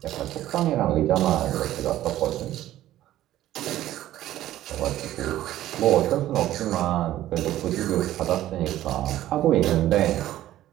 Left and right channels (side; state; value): left; quieter; 13.8 dB